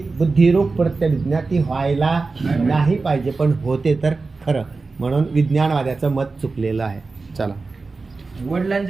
बुद्धिरूप प्रत्यभिज्ञा, ती व्हायला नाही पाहिजे, पण होते तर खरं. म्हणून विज्ञानवाद्याचं मत चुकलेलं आहे. चला,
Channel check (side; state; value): left; quieter; 4.0 dB